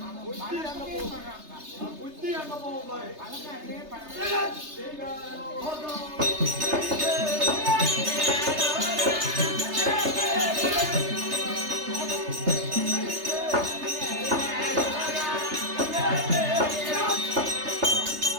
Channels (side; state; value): left; late; 3.3 ms